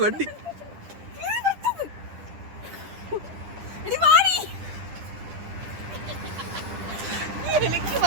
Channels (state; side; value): late; left; 10 ms